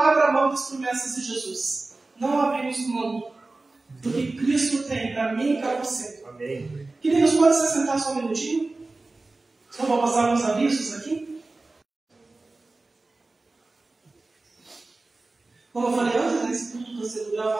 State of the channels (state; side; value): quieter; left; 3.3 dB